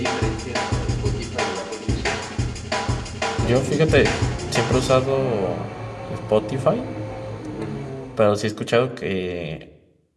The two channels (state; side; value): identical; both; correlation 1.00